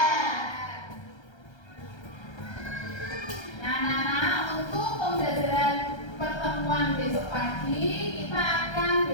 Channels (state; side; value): late; right; 1.3 ms